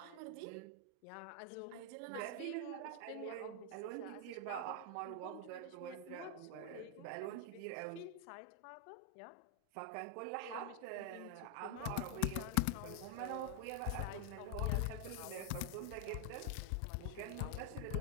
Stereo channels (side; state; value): both; different; correlation 0.00